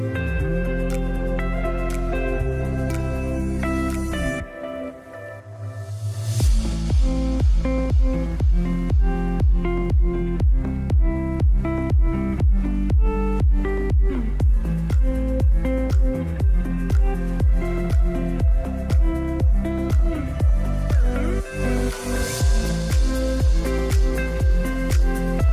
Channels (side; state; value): both; identical; correlation 1.00